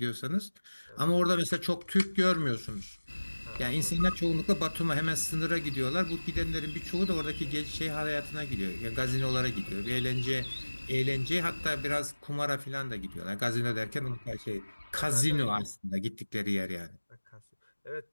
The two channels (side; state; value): both; inverted; correlation -1.00